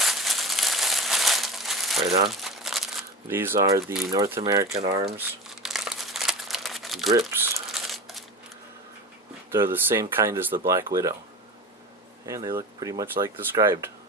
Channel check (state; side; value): normal; both; correlation 0.31